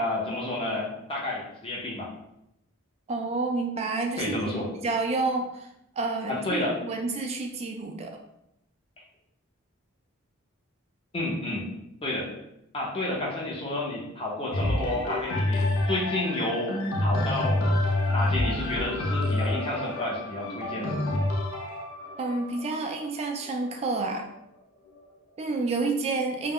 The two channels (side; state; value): both; normal; correlation 0.46